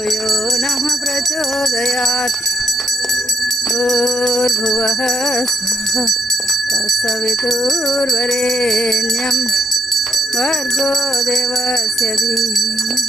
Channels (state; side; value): normal; both; correlation 0.74